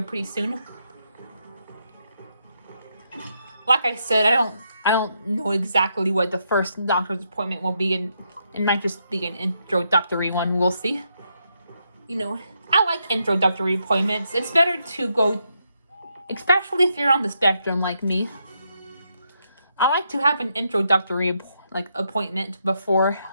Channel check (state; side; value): inverted; both; correlation -0.79